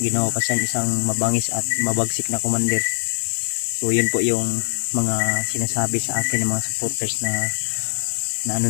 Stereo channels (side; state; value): right; silent; digital silence